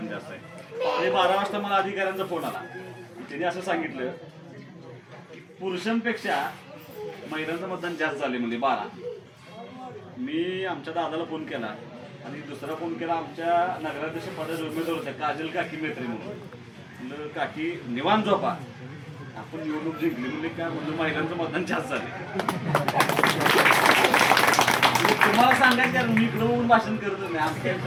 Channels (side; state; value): both; identical; correlation 1.00